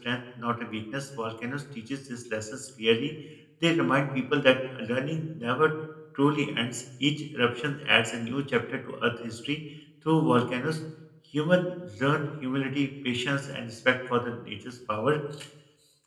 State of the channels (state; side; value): identical; both; correlation 1.00